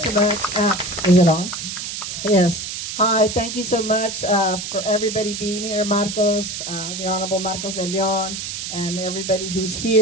so much. Is it on? Yes. Hi, thank you so much for everybody being here. Marcos, the Honorable Marcos de Leon, and everybody who's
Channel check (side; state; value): right; noise; hiss, 6 dB below the sound